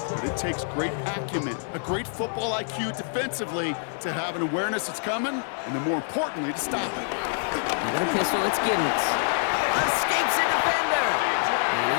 But it takes great acumen, a great football IQ defensively to have an awareness it's coming, and then more importantly, to stop it. Got a pistol, it's Giddens. Escapes a defender. And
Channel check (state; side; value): silent; right; 58 dB below the other